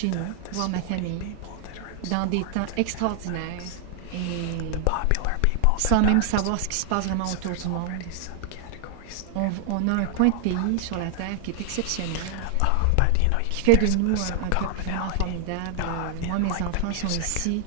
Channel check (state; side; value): different; both; correlation 0.00